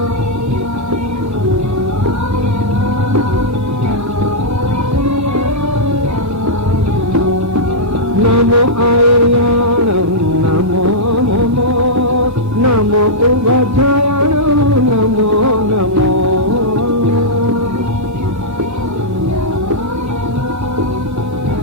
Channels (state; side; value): normal; both; correlation -0.10